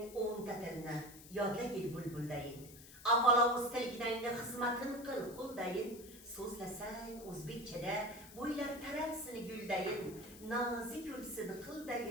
o'nta tilni, yodlagil bulbuldayin. Avvalo o'z tilginangni xizmatin qil qo'ldayin. So'zlasang o'zbekchada bo'ylar taralsin guldayin. Nozik yulsin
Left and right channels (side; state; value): left; noise; hiss, 17 dB below the sound